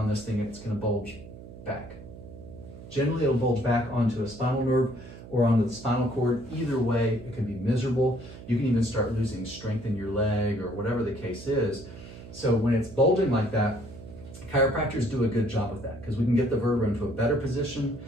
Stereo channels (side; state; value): right; noise; hum, 15 dB below the sound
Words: this thing, it's gonna bulge back. Generally, it'll bulge back onto a spinal nerve or onto the spinal cord. Either way, it can be miserable. You can even start losing strength in your leg or whatever the case is. So when it's bulging like that, chiropractors do a good job of that because we can get the vertebra into a better position,